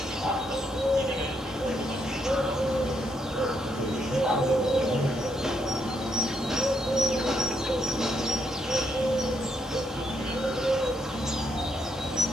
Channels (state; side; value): normal; both; correlation 0.76